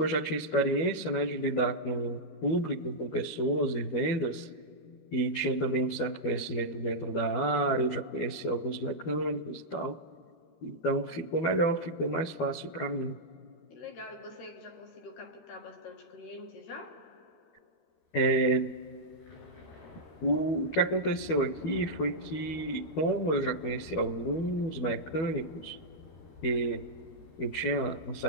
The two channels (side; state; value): right; late; 12 ms